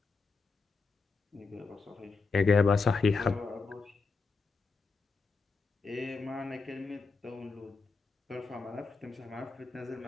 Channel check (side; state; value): right; quieter; 4.4 dB